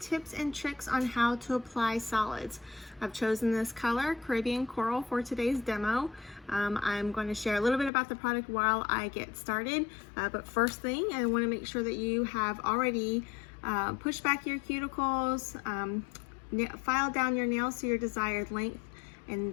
and tricks on how to apply solids. I've chosen this color, Caribbean Coral, for today's demo. I'm going to share a little bit about the product while I get started, but first thing, I want to make sure that you have already pushed back your cuticles, filed down your nails to your desired length,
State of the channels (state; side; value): drops out; right; at 7.9 s